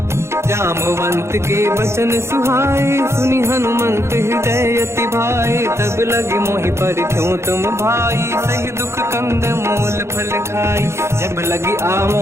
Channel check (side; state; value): left; late; 0.13 ms